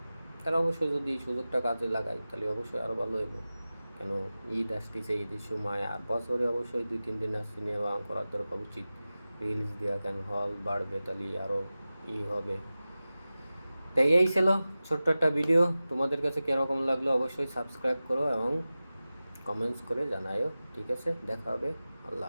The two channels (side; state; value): both; inverted; correlation -0.96